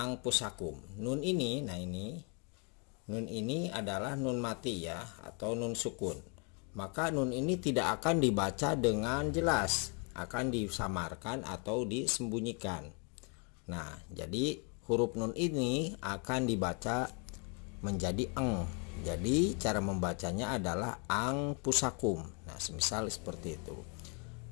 pusakum. Nun ini, nah ini nun ini adalah nun mati, ya, atau nun sukun. Maka nun ini tidak akan dibaca dengan jelas, akan disamarkan atau disembunyikan. Nah, jadi huruf nun ini akan dibaca menjadi eng. Jadi cara membacanya adalah ang pusakum. Nah, semisal seperti itu.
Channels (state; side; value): quieter; right; 36.4 dB